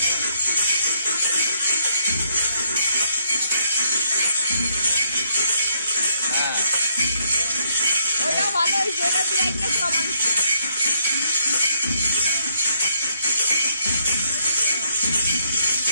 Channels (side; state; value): both; inverted; correlation -0.72